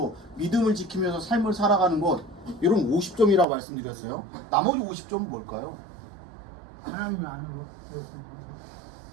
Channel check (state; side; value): drops out; left; at 3.5 s